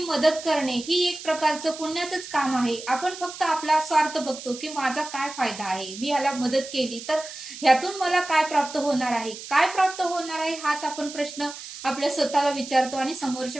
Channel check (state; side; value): noise; right; hiss, 12 dB below the sound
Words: करणे ही एक प्रकारचं पुण्याचंच काम आहे. आपण फक्त आपला स्वार्थ बघतो की माझा काय फायदा आहे, मी याला मदत केली तर ह्यातून मला काय प्राप्त होणार आहे, काय प्राप्त होणार आहे हाच आपण प्रश्न आपल्या स्वतःला विचारतो आणि